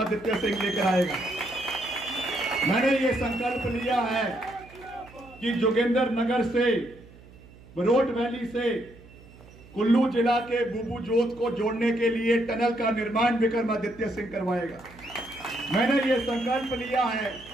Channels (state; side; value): noise; right; hum, 22 dB below the sound